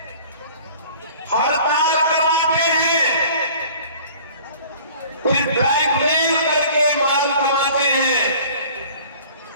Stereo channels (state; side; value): inverted; both; correlation -0.48